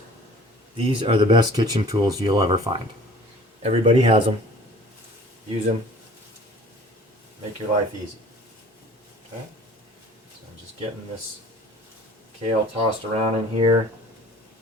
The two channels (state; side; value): normal; both; correlation 0.48